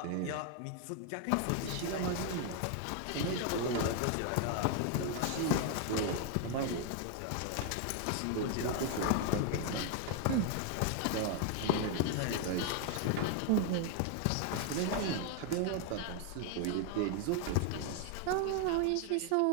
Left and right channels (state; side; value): different; both; correlation 0.00